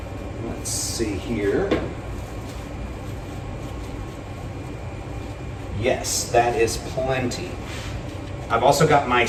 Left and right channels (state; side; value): identical; both; correlation 1.00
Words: Let's see here. Yes, that is plenty. I've also got my